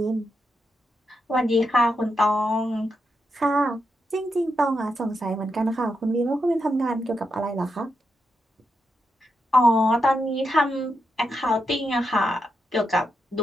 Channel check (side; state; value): both; normal; correlation 0.84